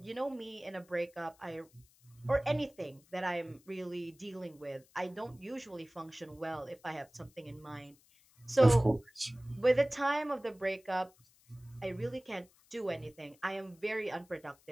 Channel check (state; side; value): noise; left; hiss, 29 dB below the sound